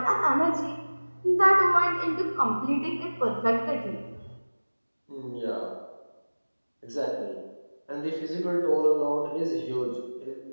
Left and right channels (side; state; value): both; inverted; correlation -1.00